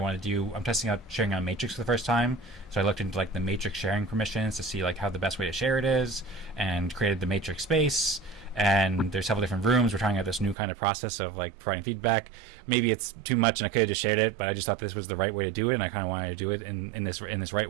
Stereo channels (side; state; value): left; drops out; at 10.6 s